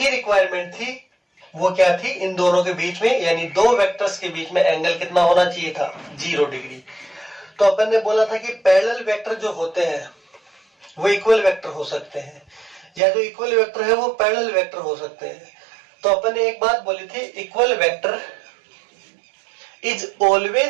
रिक्वायरमेंट थी, वो क्या थी, इन दोनों के बीच में यानी दो वेक्टर्स के बीच में एंगल कितना होना चाहिए था, 0 डिग्री। तो अपन ने बोला था कि पैरेलल वेक्टर जो होते हैं वो इक्वल वेक्टर हो सकते हैं, या जो इक्वल वेक्टर है वो पैरेलल वेक्टर हो सकते हैं। तो अपन ने एक बात बोली थी, equal vector is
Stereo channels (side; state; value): left; drops out; at 13.0 s